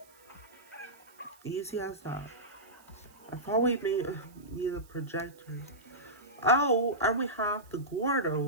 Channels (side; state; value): right; noise; hiss, 27 dB below the sound